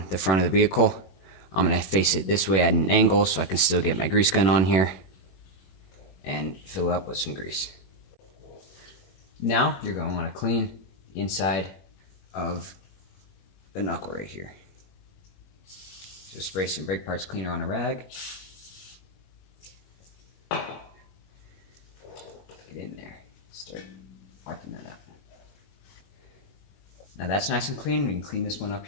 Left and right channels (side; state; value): right; late; 21 ms